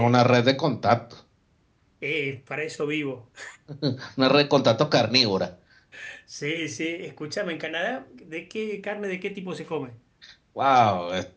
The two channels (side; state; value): both; identical; correlation 1.00